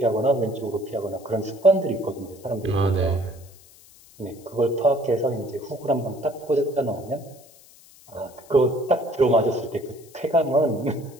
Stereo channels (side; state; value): left; noise; hiss, 24 dB below the sound